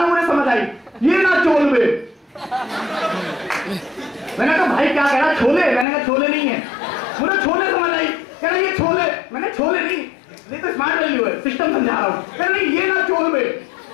में मुझे समझ आई, ये ना चोल में। मैंने कहा भाई क्या कह रहा, छोले? मैंने कहा छोले नहीं है, मुझे छोले समझ आई। कह रहा ये छोले, मैंने छोले नहीं, ये तो स्मार्ट वैल्यू है, सिस्टम समझा रहा हूँ। कह रहा नहीं ये ना चोल में।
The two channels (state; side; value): drops out; right; at 5.9 s